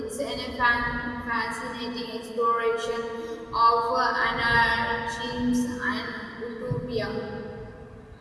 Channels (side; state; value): both; identical; correlation 1.00